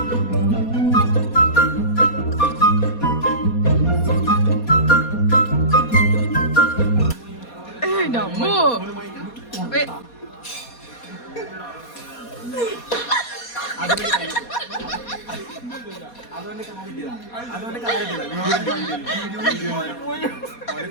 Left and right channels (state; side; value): late; right; 4.2 ms